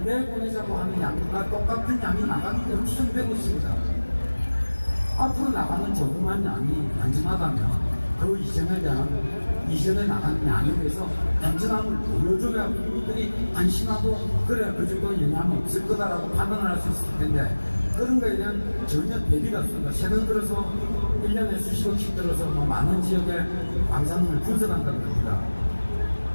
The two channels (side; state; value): both; inverted; correlation -1.00